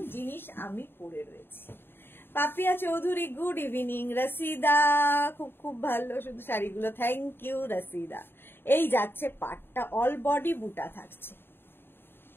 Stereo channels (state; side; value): late; right; 0.10 ms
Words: জিনিস আমি পরে রয়েছি। Papiya Chowdhury good evening. রসিদা খুব খুব ভালো শুধু শাড়িগুলো, থ্যাংক ইউ রসিদা। এই যাচ্ছে পাটটা, অল বডি বুটা থাকছে।